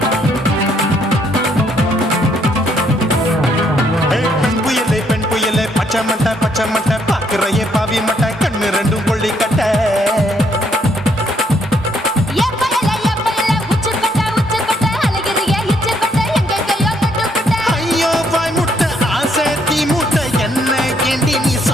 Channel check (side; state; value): both; normal; correlation 0.71